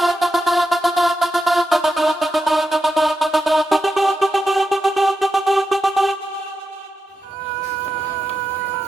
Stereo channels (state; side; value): normal; both; correlation 0.87